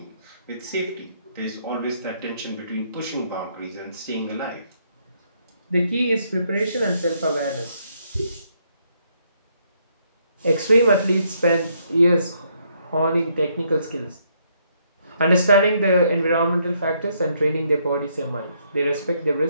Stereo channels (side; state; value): both; inverted; correlation -0.72